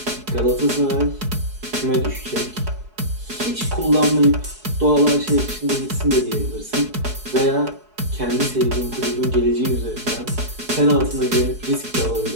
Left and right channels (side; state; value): left; late; 4.7 ms